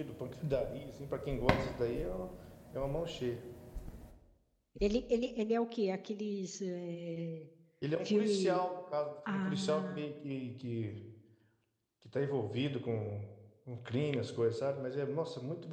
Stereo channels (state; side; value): identical; both; correlation 1.00